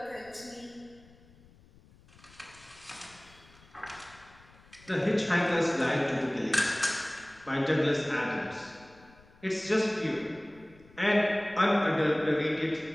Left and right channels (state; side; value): noise; left; rumble, 26 dB below the sound